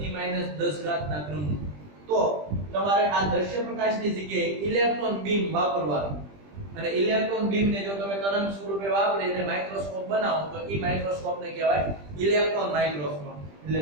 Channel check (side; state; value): left; late; 20 ms